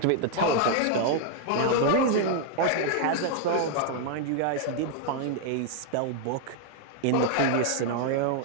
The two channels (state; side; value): different; both; correlation 0.00